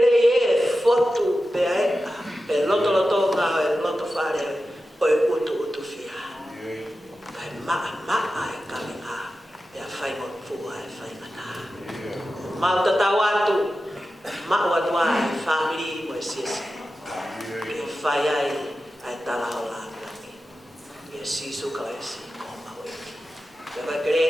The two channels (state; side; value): normal; both; correlation 0.92